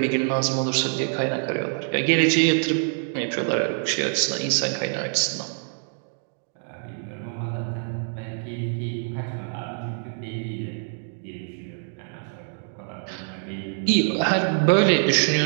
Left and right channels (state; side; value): silent; left; 62 dB below the other